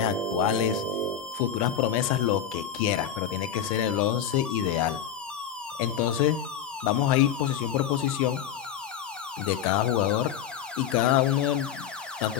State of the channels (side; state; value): right; quieter; 9.0 dB